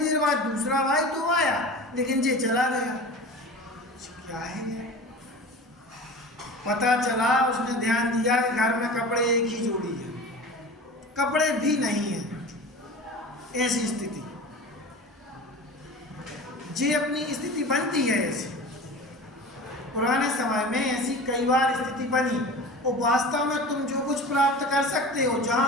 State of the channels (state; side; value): normal; both; correlation 0.35